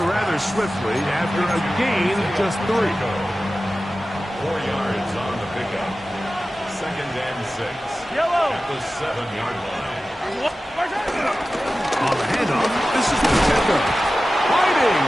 rather swiftly after a gain of just 3. 4 yards on the pickup. 2nd and 6. At the 7-yard line. On the handoff, this is Pacheco. Fighting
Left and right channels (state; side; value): normal; both; correlation 0.95